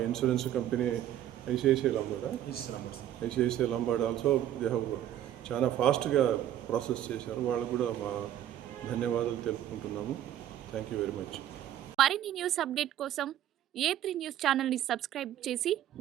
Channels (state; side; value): quieter; left; 11.7 dB